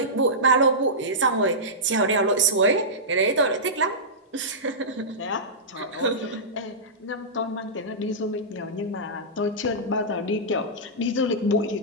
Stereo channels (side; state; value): both; normal; correlation -0.16